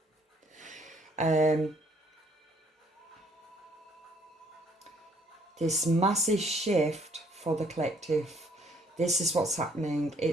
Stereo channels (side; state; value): both; normal; correlation 0.64